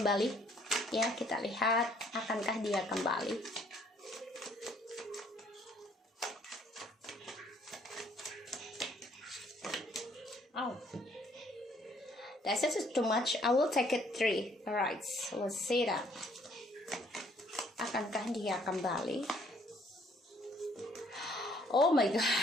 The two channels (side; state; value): both; normal; correlation 0.64